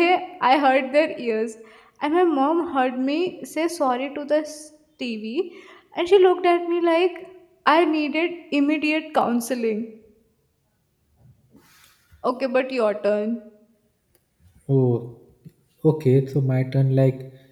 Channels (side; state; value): both; identical; correlation 1.00